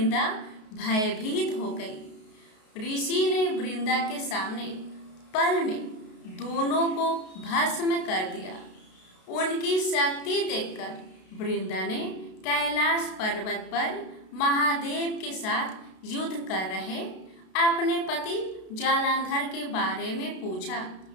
भयभीत हो गई। ऋषि ने वृंदा के सामने पल में दोनों को भस्म कर दिया। उनकी शक्ति देखकर वृंदा ने कैलाश पर्वत पर महादेव के साथ युद्ध कर रहे अपने पति जालंधर के बारे में पूछा।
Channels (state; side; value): late; right; 32 ms